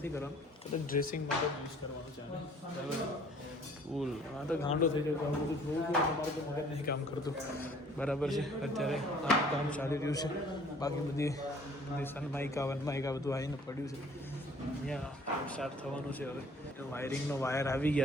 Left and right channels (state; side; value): normal; both; correlation 0.55